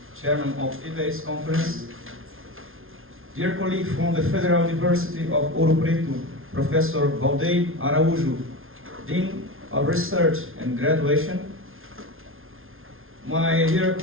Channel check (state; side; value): late; left; 0.60 ms